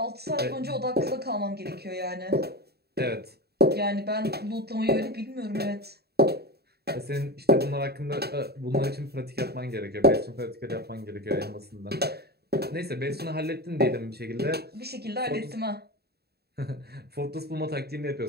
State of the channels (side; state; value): left; late; 0.47 ms